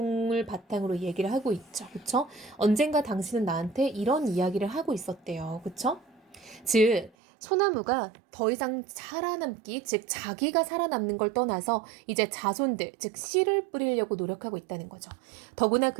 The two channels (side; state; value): left; drops out; at 7.1 s